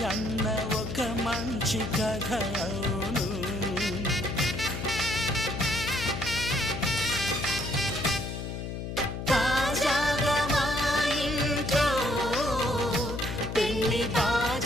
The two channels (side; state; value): left; noise; hum, 6 dB below the sound